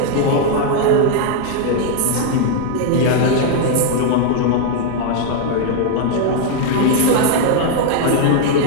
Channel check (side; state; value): both; different; correlation 0.00